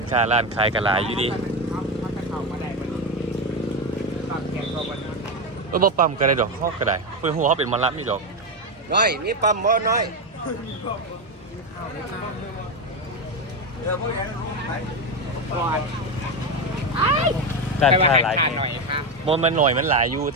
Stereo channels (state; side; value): normal; both; correlation 0.12